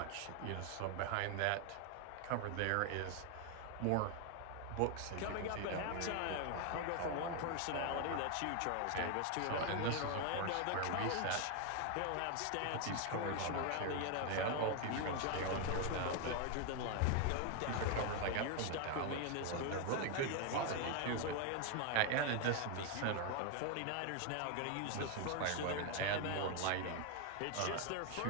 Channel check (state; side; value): different; both; correlation 0.01